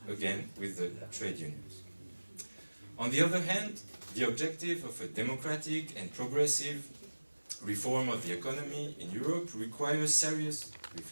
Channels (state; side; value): inverted; both; correlation -1.00